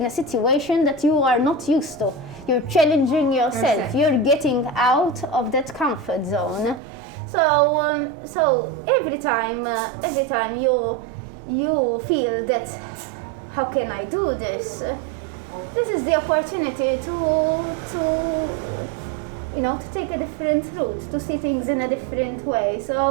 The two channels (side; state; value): left; drops out; at 6.8 s